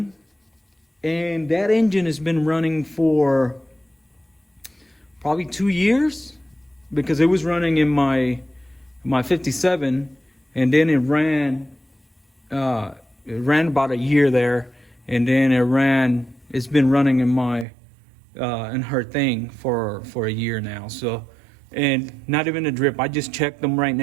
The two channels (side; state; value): left; drops out; at 17.7 s